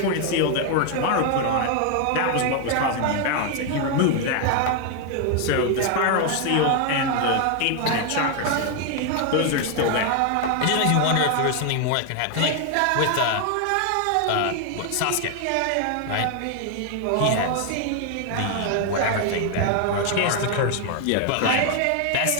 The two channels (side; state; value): both; different; correlation 0.01